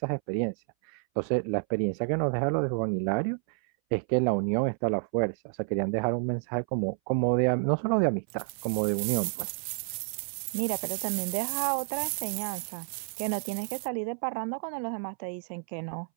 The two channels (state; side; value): silent; left; 58 dB below the other